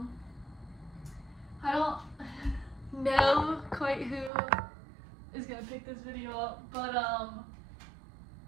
don't know quite who is gonna pick this video up, but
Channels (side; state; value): left; drops out; at 4.3 s